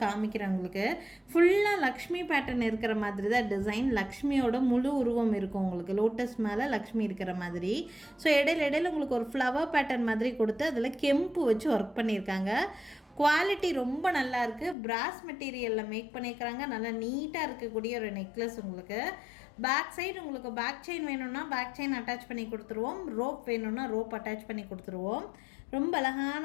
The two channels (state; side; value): drops out; right; at 14.8 s